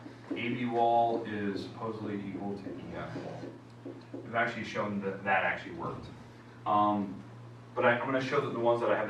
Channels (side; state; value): both; identical; correlation 1.00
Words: AB wall is supposedly equal to EF wall. We've actually shown that that actually worked. But I'm going to show that the ones that I have